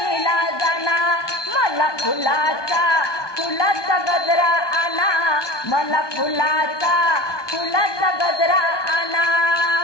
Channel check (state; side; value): late; right; 1.2 ms